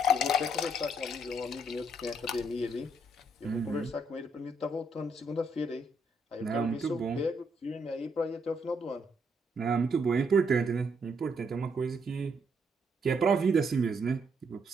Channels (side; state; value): both; normal; correlation 0.73